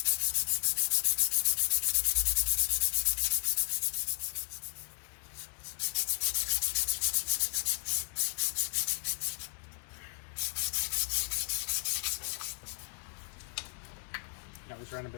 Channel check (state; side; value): silent; right; 55 dB below the other